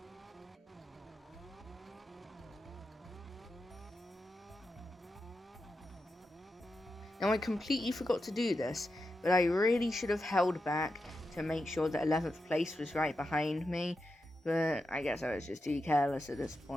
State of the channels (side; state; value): both; normal; correlation 0.88